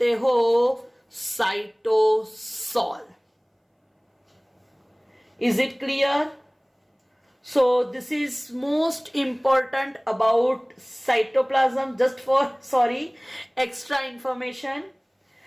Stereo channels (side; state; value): both; identical; correlation 1.00